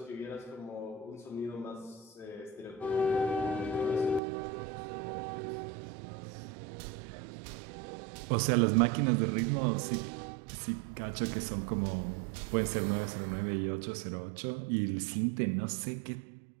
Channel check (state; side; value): drops out; left; at 4.2 s